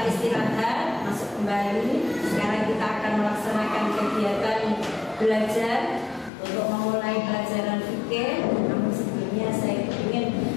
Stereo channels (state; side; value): drops out; right; at 6.3 s